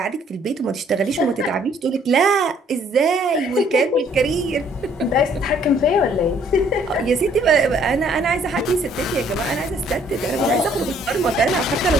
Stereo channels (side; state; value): both; normal; correlation 0.62